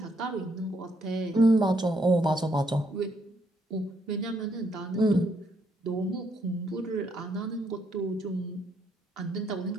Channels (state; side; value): normal; both; correlation 0.73